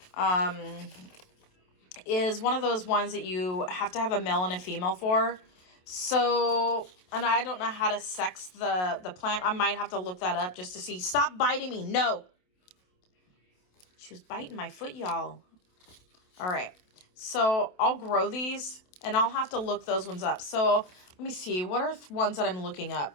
is one of those ones that you have to have a male and a female for. So, and I don't know how to sex the plant. I might have to look that up just to see. Stop biting me. No. She was biting my foot, y'all. All right. So I'll grow these and I'll have to look those ones up. So let me see. What are ones that I'm looking up?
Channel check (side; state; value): right; late; 27 ms